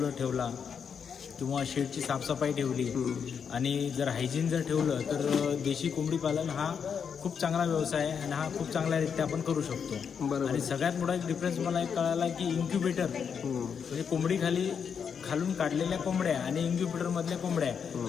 ठेवला किंवा शेडची साफसफाई ठेवली आणि जर हायजीन जर ठेवलं तर देशी कोंबडी पालन हा खूप चांगला व्यवसाय आहे आणि हा खूप चांगल्यारीत्या आपण करू शकतो. बरोबर. आणि सगळ्यात मोठा एक डिफरन्स मला एक कळाला की इन्क्युबेटर म्हणजे कोंबडी खालून काढलेल्या कोंबड्या आणि इन्क्युबेटरमधल्या कोंबड्या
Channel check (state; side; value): quieter; right; 6.9 dB